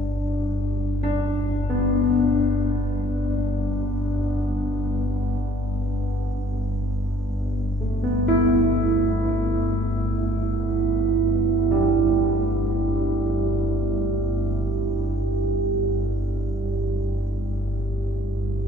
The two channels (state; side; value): normal; both; correlation 0.59